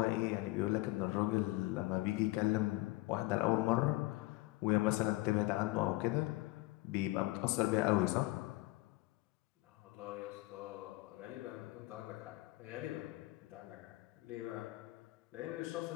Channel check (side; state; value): right; quieter; 20.4 dB